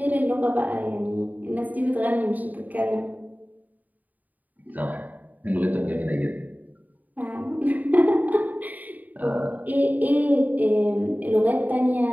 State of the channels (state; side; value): late; left; 0.080 ms